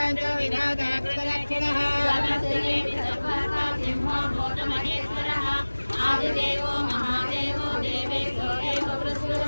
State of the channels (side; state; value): both; inverted; correlation -1.00